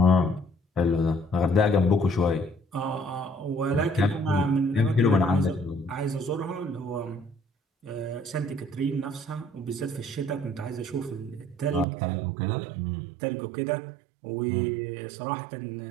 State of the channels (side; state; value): left; drops out; at 11.9 s